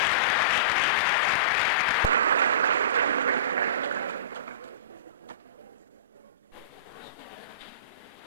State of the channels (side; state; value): both; inverted; correlation -0.32